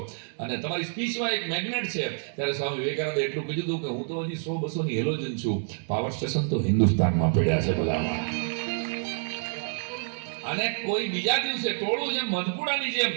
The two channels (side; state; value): left; silent; 60 dB below the other